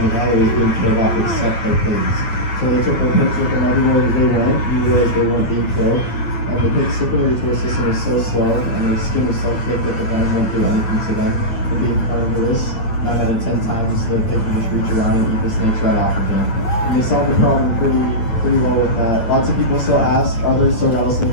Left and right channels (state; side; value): late; right; 9.1 ms